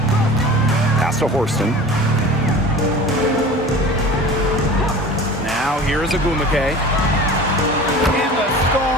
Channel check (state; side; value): normal; both; correlation 0.38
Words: Pass to Horston. Now here's Ogumake. And the